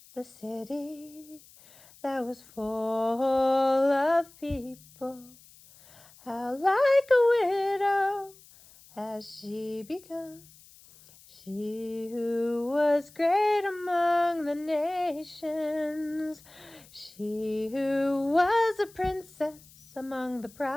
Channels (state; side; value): noise; left; hiss, 24 dB below the sound